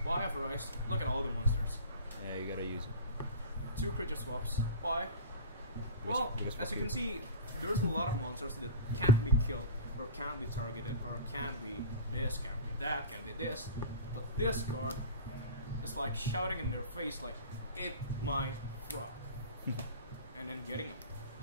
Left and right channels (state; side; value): inverted; both; correlation -0.33